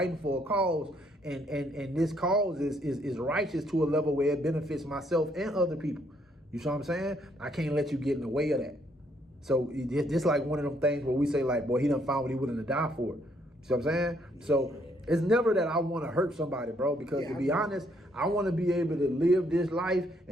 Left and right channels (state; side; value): normal; both; correlation 0.70